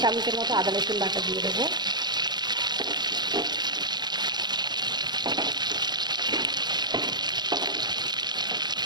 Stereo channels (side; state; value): left; late; 0.21 ms